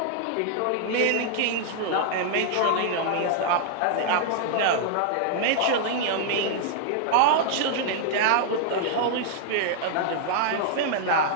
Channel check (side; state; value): both; different; correlation 0.00